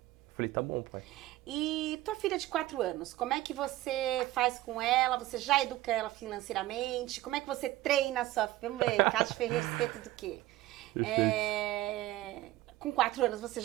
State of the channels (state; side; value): quieter; left; 16.4 dB